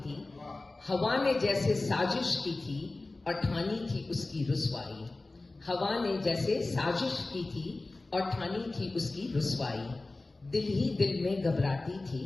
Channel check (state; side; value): quieter; right; 3.2 dB